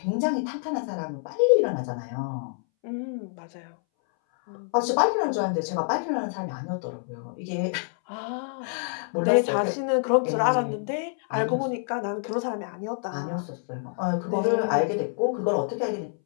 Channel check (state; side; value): silent; right; 60 dB below the other